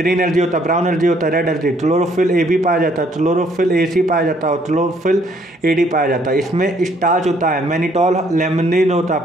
एल्गी होता है, ब्राउन एल्गी होता है, रेड एल्गी। क्लोरोफिल ए भी पाया जाता है, क्लोरोफिल ए सी पाया जाता है, और क्लोरोफिल ए डी पाया जाता है। इसमें स्टार्च होता है, मैनिटॉल लेमनिन होता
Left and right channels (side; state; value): both; normal; correlation 0.65